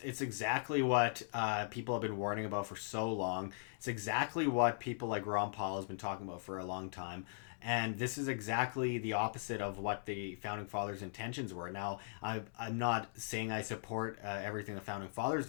exactly what people have been warning about for so long. It's exactly what people like Ron Paul has been talking about for a long time. And this is exactly the opposite of what the Founding Fathers' intentions were. Now, I'm not saying I support everything the Founding Fathers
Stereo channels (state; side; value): silent; right; digital silence